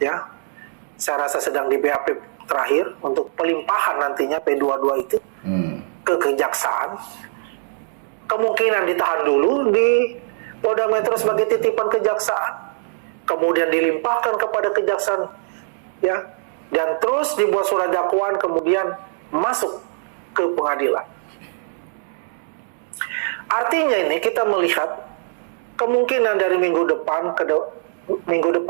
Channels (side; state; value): left; silent; digital silence